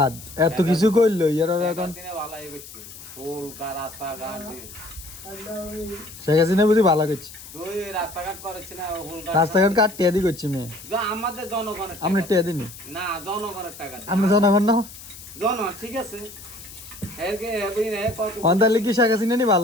এত কিছু করলো ইয়ারা এখন ভালো হয়ে গেছে হোল রাস্তাঘাট দিন শেখ হাসিনা বুঝি ভালো করছে তুই রাস্তাঘাট করেছি না হোল রাস্তাঘাট কাট টিয়া দি করছি মেয়ে আমাদের জনগণের আমরা টিয়া দিনি না জনগণের টাকা আমরা জনগণ না জনগণ ঠিক আছে অন্তালে কি শেখ হাসিনা নি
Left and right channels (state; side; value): noise; left; hiss, 16 dB below the sound